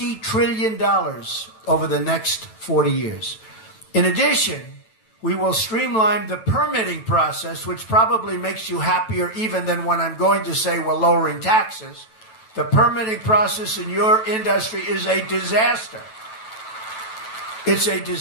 trillion over the next 40 years. In addition, we will streamline the permitting process, which probably makes you happier even than when I'm going to say we're lowering taxes. The permitting process in your industry is a disaster. It's a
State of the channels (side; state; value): right; late; 9.1 ms